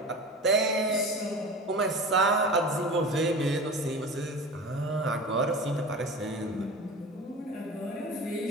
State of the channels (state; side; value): normal; both; correlation 0.34